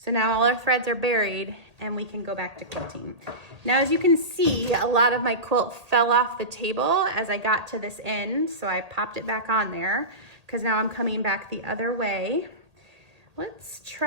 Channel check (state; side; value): late; left; 1.8 ms